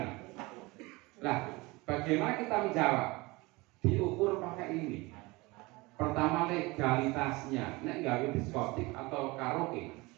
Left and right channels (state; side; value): quieter; left; 23.4 dB